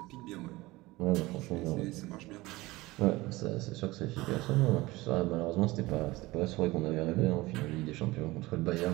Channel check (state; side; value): quieter; left; 20.2 dB